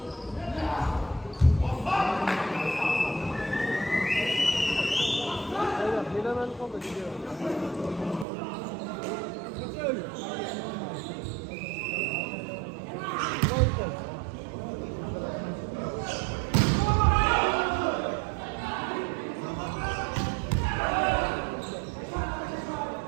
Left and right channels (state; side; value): drops out; left; at 8.2 s